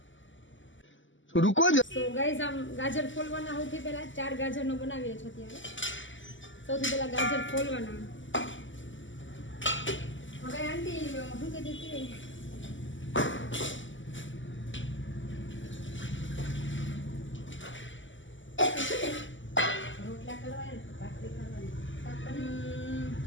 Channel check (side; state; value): right; late; 0.55 ms